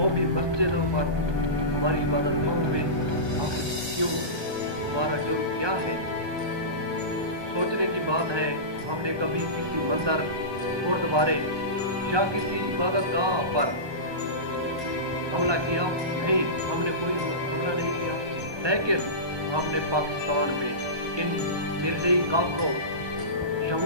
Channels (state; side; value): late; left; 1.2 ms